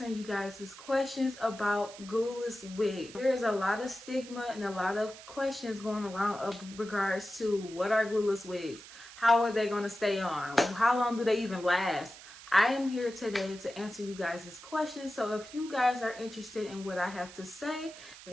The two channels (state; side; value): noise; right; hiss, 17 dB below the sound